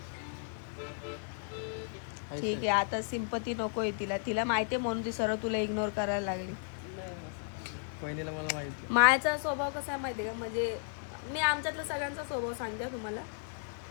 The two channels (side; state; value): right; silent; digital silence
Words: ठीक आहे, आता सिंपती नकोय तिला. तिला माहिती आहे म्हणून ती सरळ तुला इग्नोर करायला लागली. पहिलेला मला माहिती मायाचा स्वभाव कसा आहे माहिती आहे का? म्हणजे मी आमच्यातला सगळ्यांचा स्वभाव सांगते तुम्हाला.